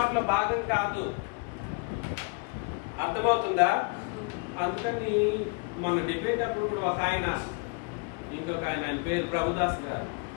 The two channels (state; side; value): quieter; right; 32.6 dB